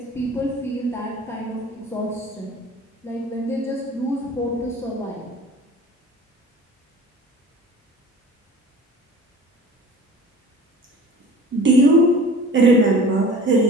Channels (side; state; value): both; normal; correlation 0.42